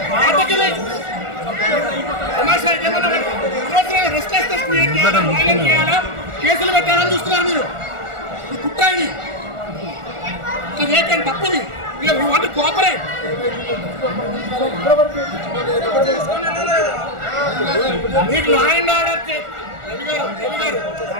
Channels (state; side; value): late; left; 1.4 ms